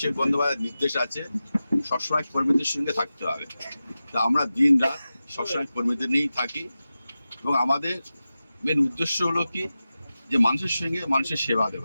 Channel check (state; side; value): inverted; both; correlation -0.94